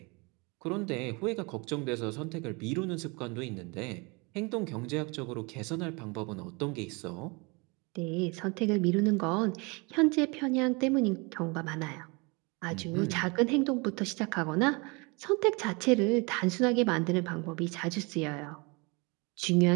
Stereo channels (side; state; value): left; quieter; 28.8 dB